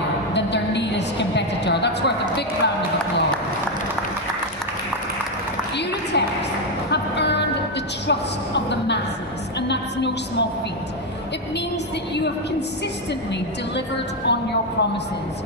than their nearest competitor. That's worth a big round of applause. Uratex have earned the trust of the masses, and that's no small feat. It means that you have consistently delivered on your promises.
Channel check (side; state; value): both; normal; correlation 0.06